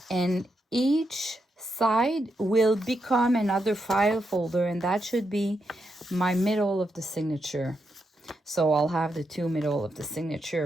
and each side will become another file folder, and that should be my middle of the signature. So I'll have the 2 middle of the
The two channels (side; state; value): both; normal; correlation 0.83